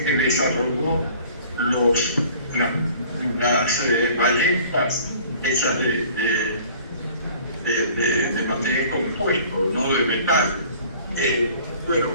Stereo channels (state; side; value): inverted; both; correlation -0.50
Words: que desarrolló las balletas hechas de material compuesto, no de metal. Bueno,